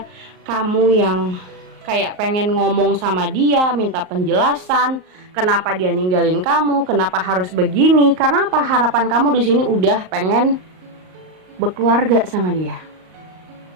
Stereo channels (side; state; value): left; late; 38 ms